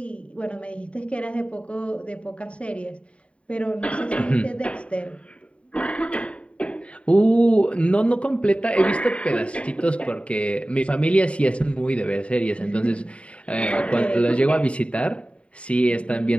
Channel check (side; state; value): right; late; 0.062 ms